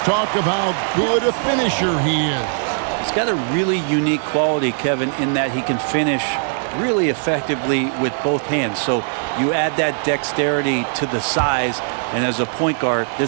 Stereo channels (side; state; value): left; silent; digital silence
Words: of how good a finisher he is. He's got a really unique quality, Kevin, in that he can finish really effectively with both hands. So you add that dexterity to the size, and as a point guard,